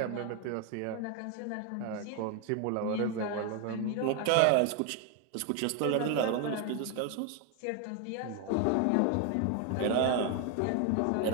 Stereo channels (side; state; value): both; different; correlation 0.01